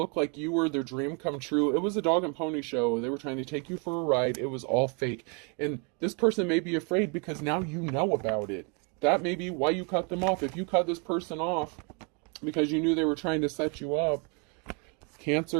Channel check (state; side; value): quieter; left; 33.9 dB